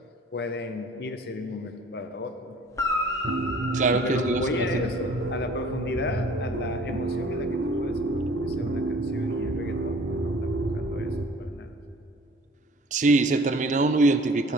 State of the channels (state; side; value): normal; both; correlation 0.50